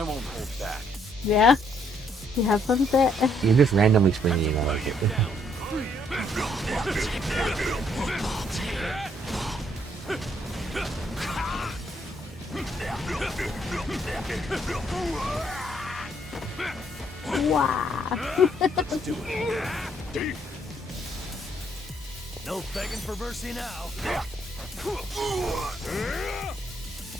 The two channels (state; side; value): normal; both; correlation 0.70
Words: won't hold back. Yeah. You have fun with that? You're just randomly springing out of it. Wow. No begging for mercy now.